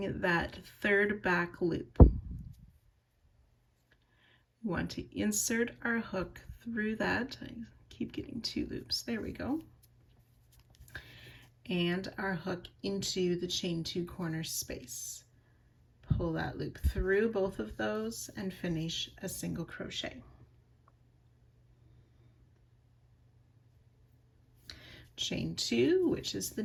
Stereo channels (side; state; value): both; identical; correlation 1.00